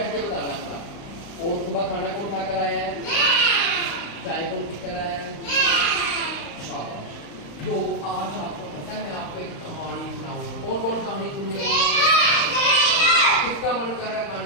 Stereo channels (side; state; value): right; late; 35 ms